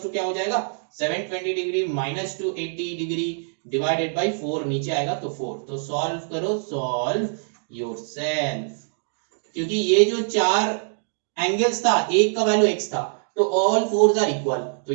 टू क्या हो जाएगा 720 degree minus 280 degree divided bye 4, नीचे आएगा तो 4, तो सॉल्व करो, सॉल्व योरसेल्फ, क्योंकि ये जो चार एंगल्स था एक का वैल्यू x था, तो ऑल फोर्स आर इक्वल, तो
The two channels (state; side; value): silent; left; digital silence